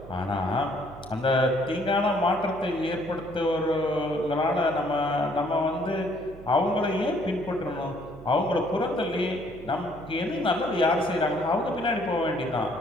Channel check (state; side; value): noise; right; hum, 17 dB below the sound